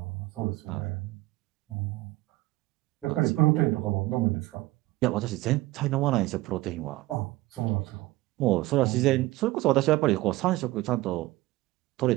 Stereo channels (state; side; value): quieter; left; 18.7 dB